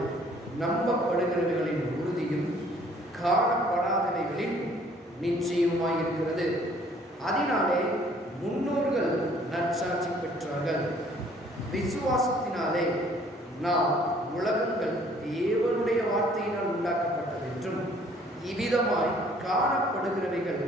நம்பப்படுகிறவைகளின் உறுதியும் காணப்படாதவைகளின் நிச்சயமாய் இருக்கிறது. அதனாலே முன்னோர்கள் நற்சாட்சி பெற்றார்கள். விசுவாசத்தினாலே நாம் உலகங்கள் தேவனுடைய வார்த்தையினால் உண்டாக்கப்பட்டது என்றும் இவ்விதமாய் காணப்படுகிறவைகள்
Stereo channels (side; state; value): both; normal; correlation 0.59